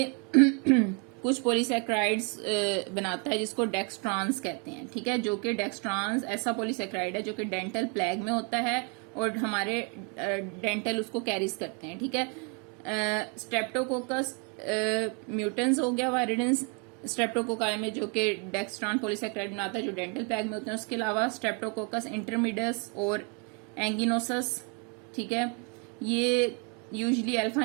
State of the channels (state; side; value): quieter; left; 35.5 dB